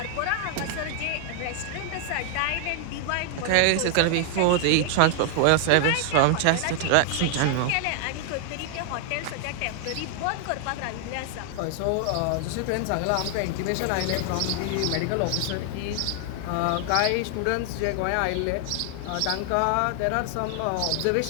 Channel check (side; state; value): both; different; correlation 0.00